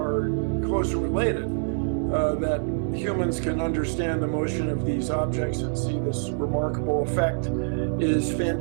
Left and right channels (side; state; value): left; silent; 57 dB below the other